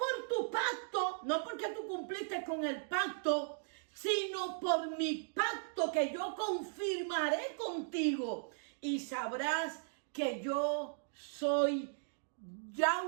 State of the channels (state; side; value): silent; left; digital silence